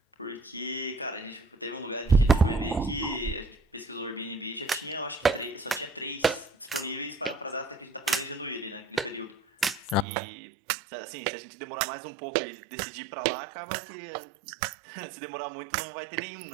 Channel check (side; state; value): left; drops out; at 10.1 s